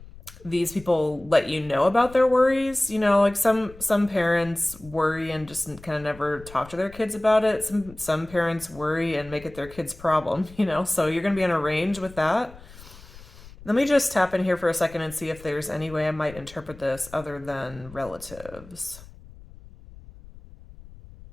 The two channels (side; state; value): left; noise; rumble, 20 dB below the sound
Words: these people let you know about their worries. Like some parents worry and just kind of never talk to their kids about it. Some parents worry and make it their kid's problem, so you're going to be on a range with that. Let me just tap in here for a second and see if there's any way I might interpret this other than relatives.